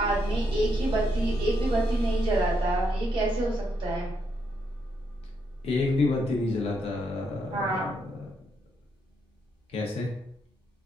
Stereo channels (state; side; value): normal; both; correlation 0.78